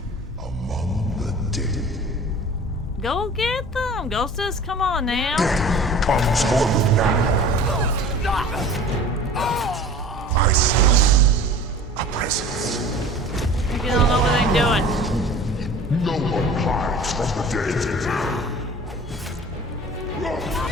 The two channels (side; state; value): both; normal; correlation 0.43